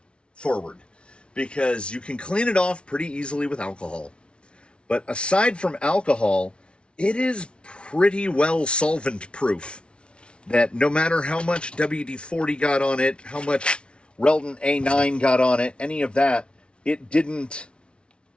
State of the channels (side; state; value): right; late; 0.058 ms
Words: forward, because you can clean it off pretty easily with alcohol. But aside from alcohol, it is pretty well solvent proof, that no matter how much WD-40 got on it, how much Relton A9 got on it, any of that, it didn't